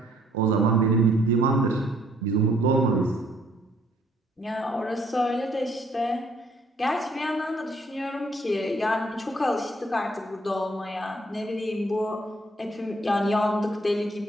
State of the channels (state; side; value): normal; both; correlation 0.65